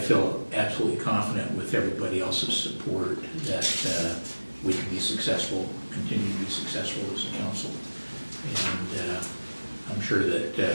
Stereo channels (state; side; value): inverted; both; correlation -1.00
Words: absolutely confident with everybody else's support that we can be successful, continue to be successful as a council. And I'm sure that